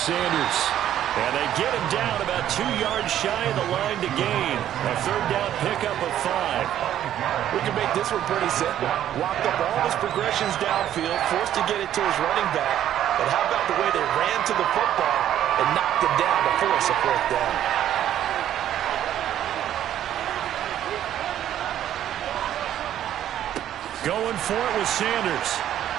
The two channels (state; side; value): quieter; left; 11.3 dB